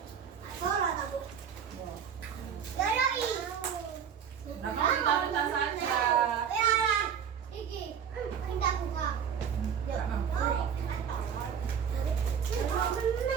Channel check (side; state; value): left; quieter; 7.8 dB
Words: Nah, kamu ditaruh tas saja.